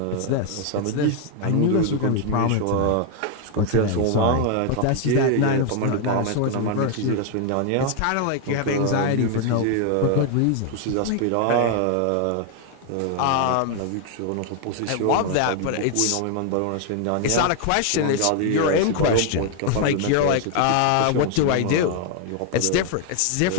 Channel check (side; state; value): both; different; correlation 0.00